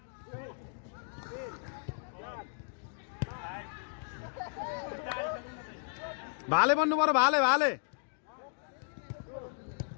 भाले बन्नु पर्यो भाले भाले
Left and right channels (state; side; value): silent; right; digital silence